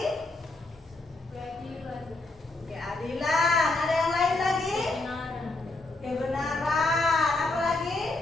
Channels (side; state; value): right; quieter; 3.0 dB